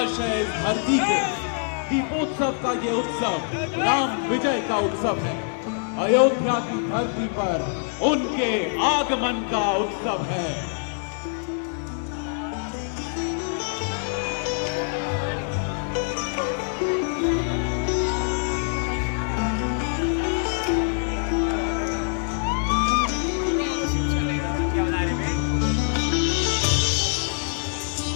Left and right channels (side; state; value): right; silent; 62 dB below the other